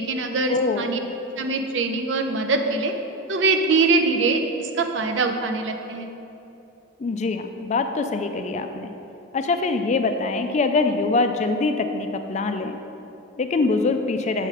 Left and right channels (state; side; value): normal; both; correlation 0.18